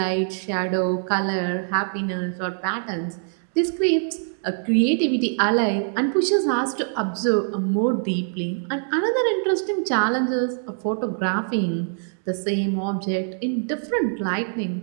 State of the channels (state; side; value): silent; left; digital silence